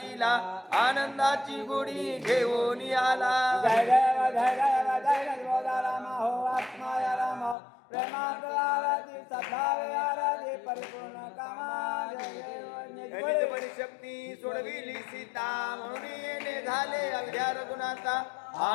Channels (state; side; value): drops out; right; at 7.6 s